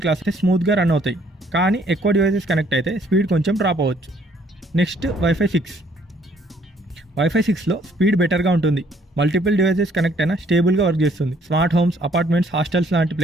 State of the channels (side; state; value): both; normal; correlation 0.63